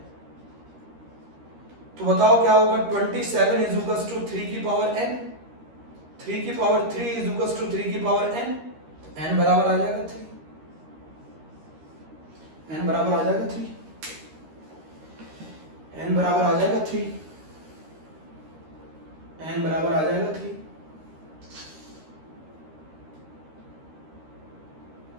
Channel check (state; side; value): late; left; 13 ms